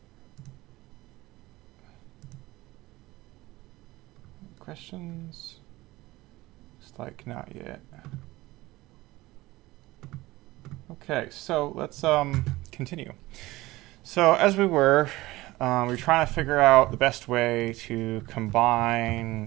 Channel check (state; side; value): quieter; left; 18.9 dB